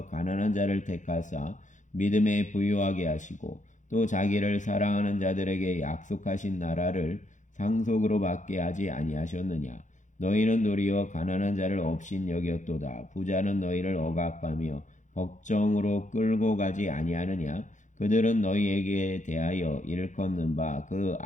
가난한 자를 택하사 믿음에 부유하게 하시고 또 자기를 사랑하는 자들에게 약속하신 나라를 상속으로 받게 하지 아니하셨느냐. 너희는 도리어 가난한 자를 업신 여겼도다. 부자는 너희를 억압하며 법정으로 끌고 가지 아니하느냐. 그들은 너희에게 대하여 일컫는 바 그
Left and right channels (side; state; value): right; late; 0.36 ms